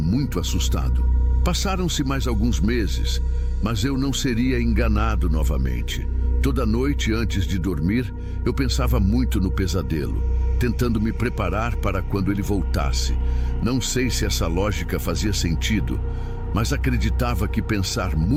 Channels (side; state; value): both; identical; correlation 1.00